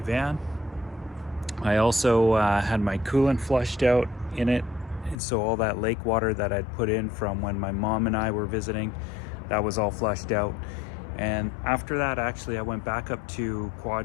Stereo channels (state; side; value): drops out; right; at 5.2 s